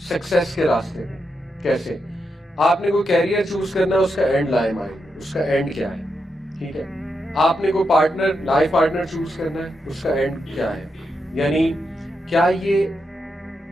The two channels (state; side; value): normal; both; correlation 0.85